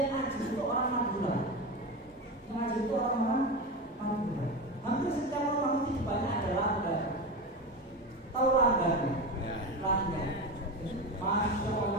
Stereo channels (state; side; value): normal; both; correlation 0.21